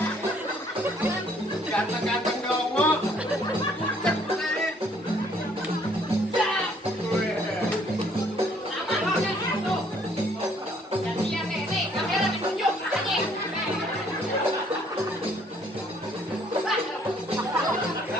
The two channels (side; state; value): both; normal; correlation 0.63